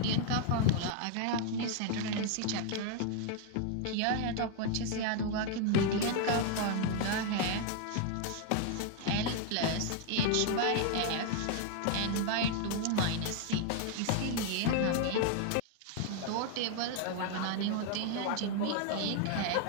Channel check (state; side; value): different; both; correlation 0.00